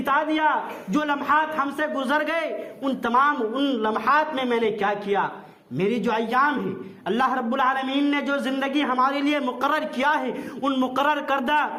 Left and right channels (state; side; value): identical; both; correlation 1.00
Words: دیا، جو لمحات ہم سے گزر گئے، ان لمحات میں نے کیا کیا؟ میری جو ایام ہیں، اللہ رب العالمین نے جو زندگی ہمارے لیے مقرر کیا ہے، ان مقرر کردہ